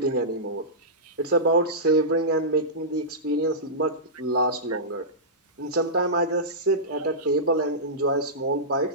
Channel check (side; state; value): both; normal; correlation -0.16